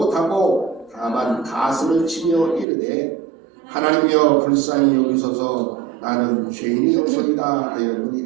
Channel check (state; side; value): drops out; left; at 2.7 s